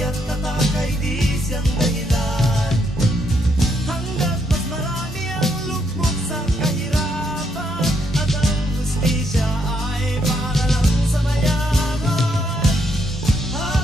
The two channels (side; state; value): both; normal; correlation 0.75